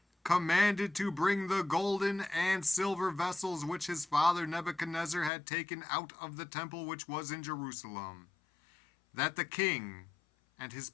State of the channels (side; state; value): right; drops out; at 5.3 s